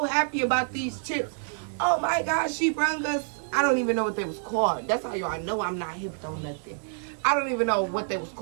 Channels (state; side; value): silent; left; 60 dB below the other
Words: happy about these chips. Oh my gosh, she brung us, I don't even know what they was called. That's how y'all know I'm not hip on nothing. I don't even know what they was